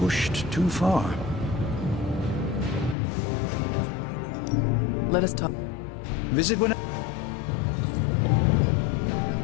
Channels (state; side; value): drops out; right; at 3.0 s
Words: too far. Let us talk. Visit when...